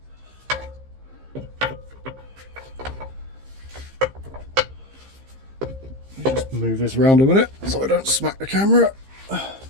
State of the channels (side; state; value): left; late; 15 ms